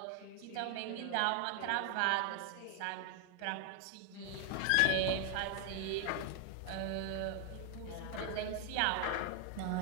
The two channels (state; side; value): different; both; correlation 0.00